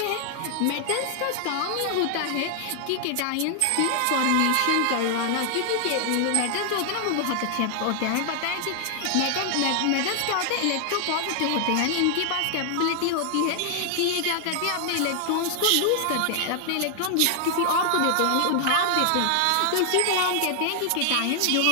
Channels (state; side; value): different; both; correlation 0.00